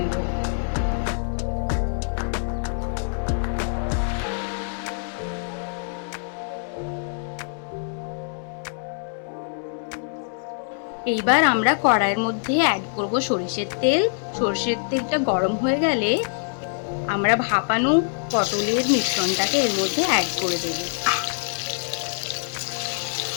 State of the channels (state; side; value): silent; right; 62 dB below the other